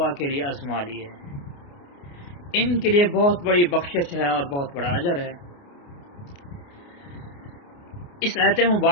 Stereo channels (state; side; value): late; right; 29 ms